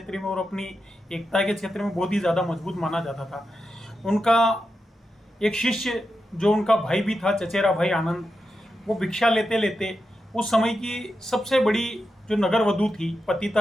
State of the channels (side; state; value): both; normal; correlation 0.88